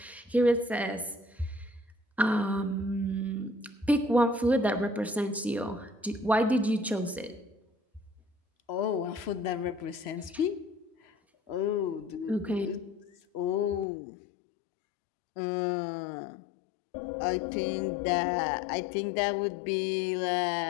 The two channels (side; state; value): right; drops out; at 13.9 s